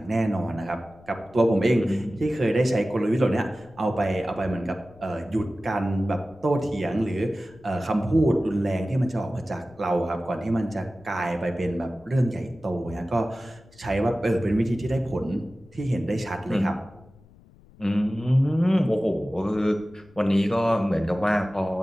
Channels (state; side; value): noise; left; rumble, 26 dB below the sound